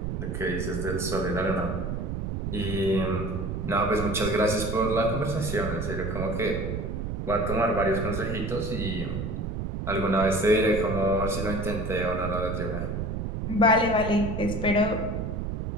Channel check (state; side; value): noise; right; rumble, 3 dB below the sound